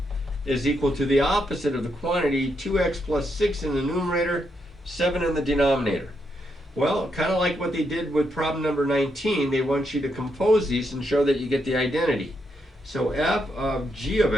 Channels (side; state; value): both; normal; correlation 0.80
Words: is equal to the opposite of the quantity 2x plus 6 in the numerator, 7 in the denominator. Well, kind of like what they did with problem number 19, they want you to compose these and show that you get the identity. So f of g of